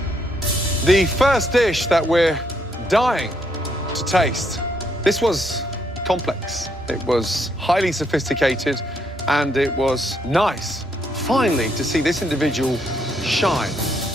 The first dish that we're dying to taste. This was complex. It was highly sophisticated, and it was nice, finally, to see this individual shine.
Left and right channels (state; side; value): normal; both; correlation 0.74